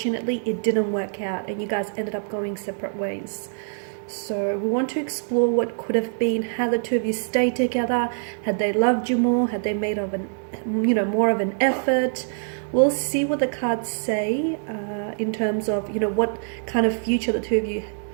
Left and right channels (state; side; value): silent; left; 61 dB below the other